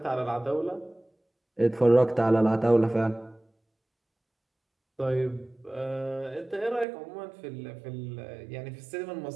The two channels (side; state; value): left; drops out; at 6.9 s